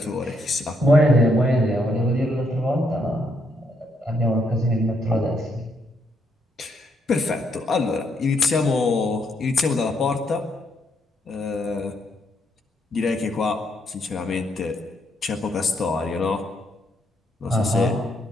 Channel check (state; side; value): normal; both; correlation 0.75